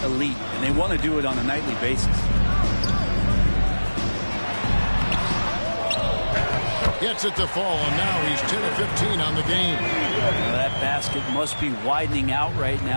elite, and they want to do it on a nightly basis. Gets it to fall, and now he's 10 of 15 on the game. That basket must be widening out right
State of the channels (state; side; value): inverted; both; correlation -1.00